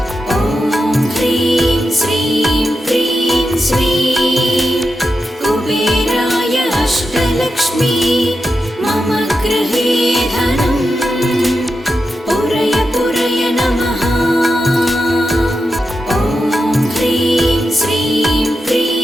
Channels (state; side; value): normal; both; correlation 0.88